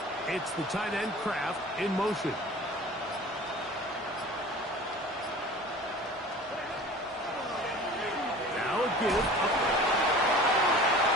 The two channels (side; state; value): both; normal; correlation 0.41